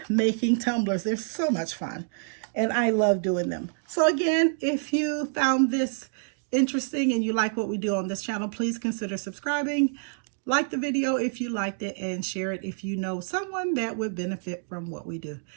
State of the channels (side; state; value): left; silent; digital silence